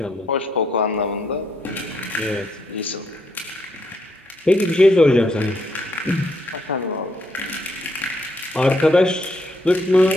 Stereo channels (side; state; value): both; normal; correlation 0.74